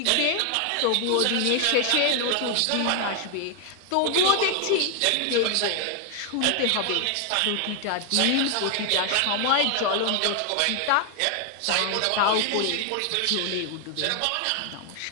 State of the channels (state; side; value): different; both; correlation 0.00